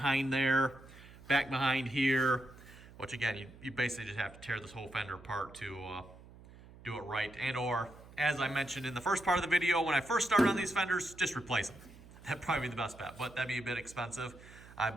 there, back behind here, which again, you basically just have to tear this whole fender apart to do it right. And or, as I mentioned in the first part of the video, when I first started on these fenders, just replace them. That'd probably be the best bet, but that'd be a bit expensive. I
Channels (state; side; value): noise; right; hum, 20 dB below the sound